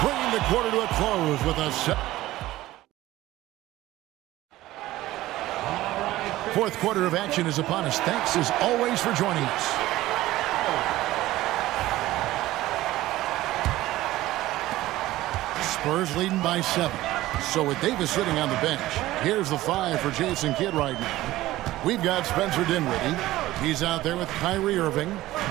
bringing the quarter to a close with a fourth quarter of action is upon us. Thanks as always for joining us. Spurs leading by 7. So with Davis sitting on the bench, here's the 5 for Jason Kidd right now. We've got Spencer Dinwiddie. He's out there with Kyrie Irving.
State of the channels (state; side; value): quieter; left; 16.3 dB